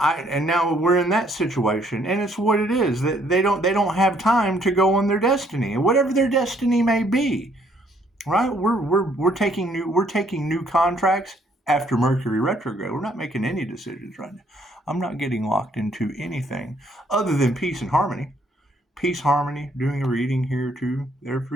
now we're in that situation, and it's what it is, that they don't have time to go on their destiny, whatever their destiny may be. Right? We're taking new contracts after Mercury retrograde. We're not making any decisions right now. I'm not getting locked into anything other than peace and harmony. Peace, harmony. Doing a reading here too, there for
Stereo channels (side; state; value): both; normal; correlation 0.66